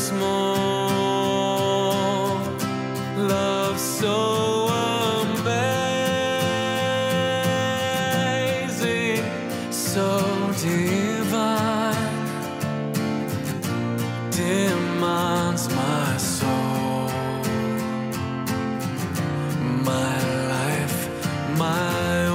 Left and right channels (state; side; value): identical; both; correlation 1.00